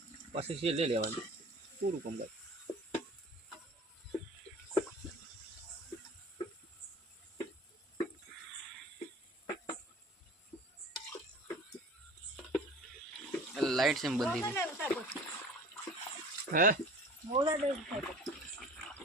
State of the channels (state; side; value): normal; both; correlation 0.42